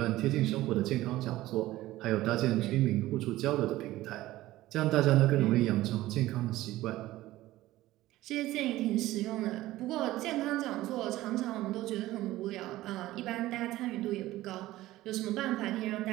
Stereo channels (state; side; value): quieter; left; 16.3 dB